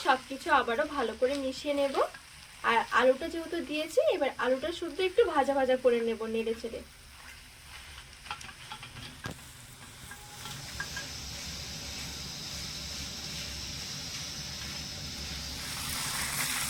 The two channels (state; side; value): identical; both; correlation 1.00